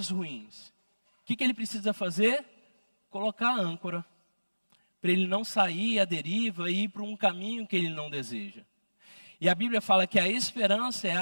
ruins. O que ele precisa fazer? Colocar a âncora, para ele não sair à deriva e ir para um caminho que ele não deseja. E a Bíblia fala que a esperança é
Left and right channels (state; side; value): inverted; both; correlation -1.00